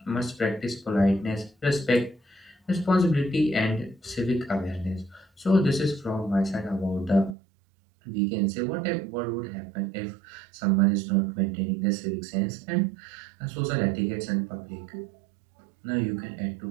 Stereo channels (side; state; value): left; drops out; at 7.4 s